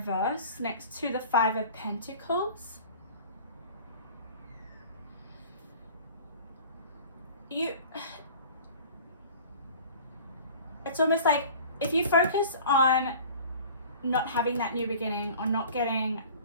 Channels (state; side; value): inverted; both; correlation -0.43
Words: next to the Five of Pentacles, it's almost like if you focus on not having that new beginning or not getting